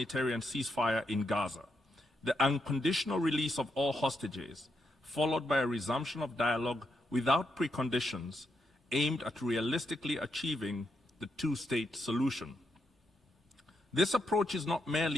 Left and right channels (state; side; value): normal; both; correlation 0.82